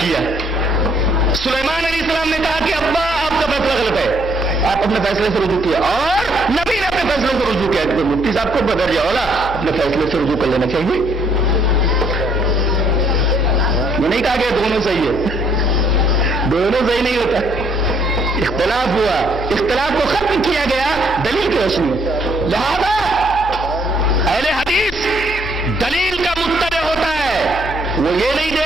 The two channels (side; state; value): both; normal; correlation 0.67